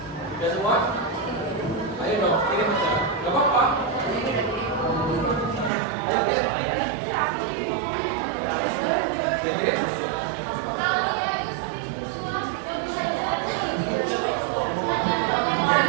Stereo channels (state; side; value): drops out; left; at 5.7 s